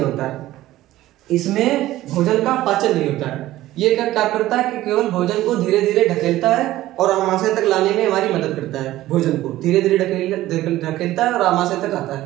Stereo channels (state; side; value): quieter; left; 15.4 dB